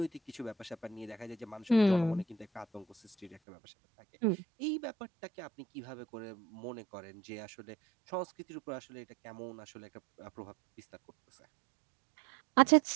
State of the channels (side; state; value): left; drops out; at 3.4 s